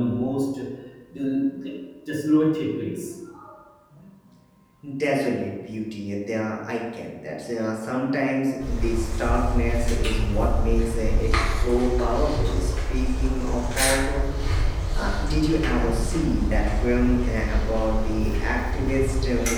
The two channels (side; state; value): both; identical; correlation 1.00